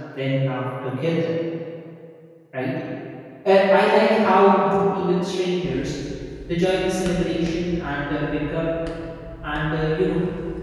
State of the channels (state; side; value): identical; both; correlation 1.00